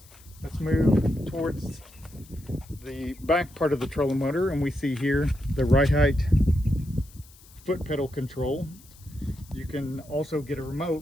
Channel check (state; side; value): noise; left; hiss, 24 dB below the sound